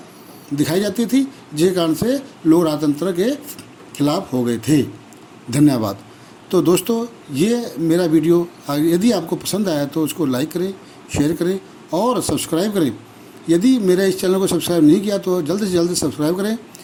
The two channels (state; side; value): identical; both; correlation 1.00